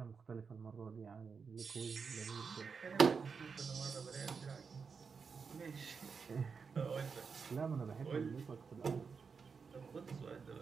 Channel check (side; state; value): left; quieter; 5.5 dB